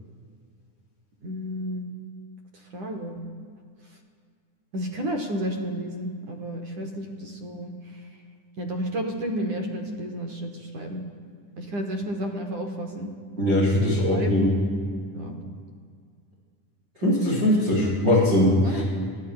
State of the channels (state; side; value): late; left; 9.9 ms